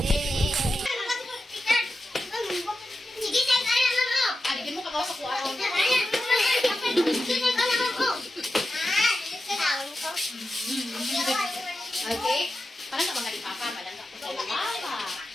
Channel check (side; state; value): both; normal; correlation 0.91